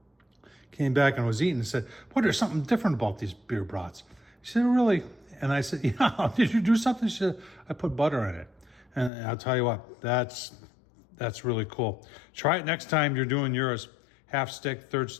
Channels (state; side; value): drops out; right; at 9.1 s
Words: came back and was eating and said, boy, there's something different about these beer brats. She said, really? And I said, yeah, did you do something? She said, I put butter in it. And I'll tell you what, that's really cool. Try it next time you're doing yours. Half stick, third